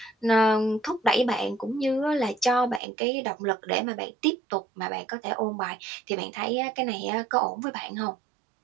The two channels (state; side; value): drops out; left; at 2.8 s